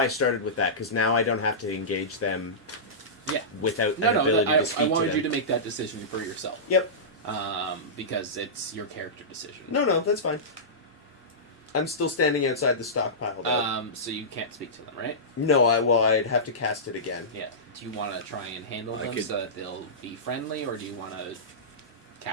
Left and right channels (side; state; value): both; normal; correlation -0.17